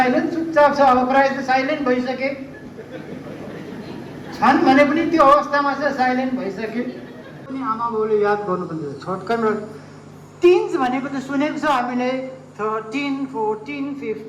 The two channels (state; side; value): identical; both; correlation 1.00